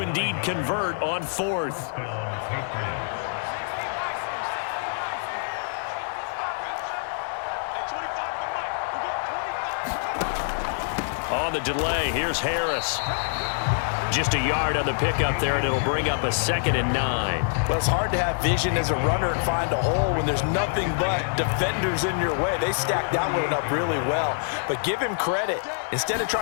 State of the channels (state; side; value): silent; right; digital silence